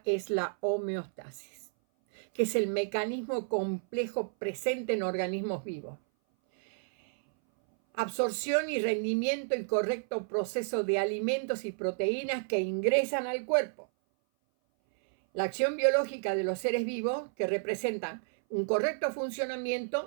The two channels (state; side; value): silent; left; 57 dB below the other